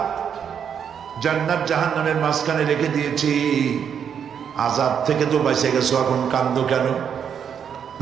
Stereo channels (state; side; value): quieter; left; 7.8 dB